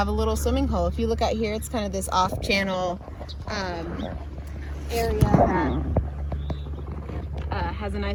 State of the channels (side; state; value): both; identical; correlation 1.00